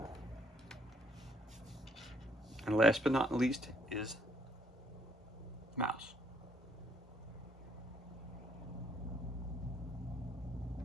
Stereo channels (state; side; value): normal; both; correlation 0.68